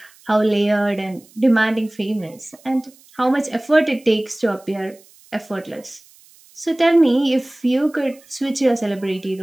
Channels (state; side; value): noise; right; hiss, 27 dB below the sound